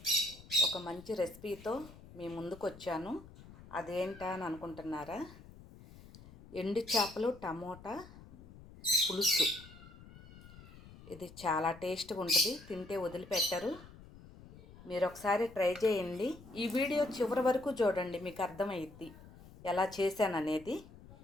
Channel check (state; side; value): noise; left; rumble, 19 dB below the sound